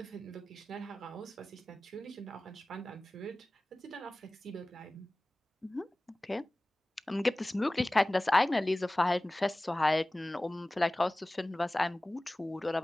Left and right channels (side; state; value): both; normal; correlation 0.98